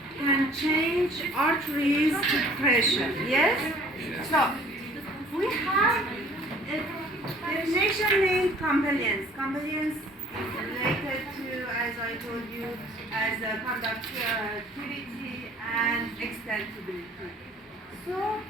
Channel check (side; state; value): both; normal; correlation 0.53